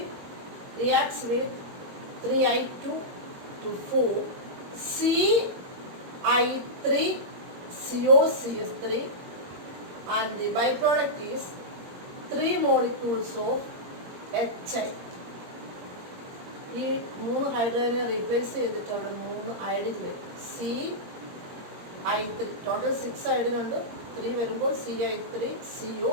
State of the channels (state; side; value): late; left; 22 ms